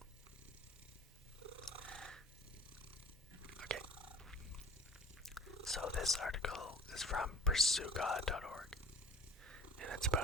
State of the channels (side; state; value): both; normal; correlation 0.46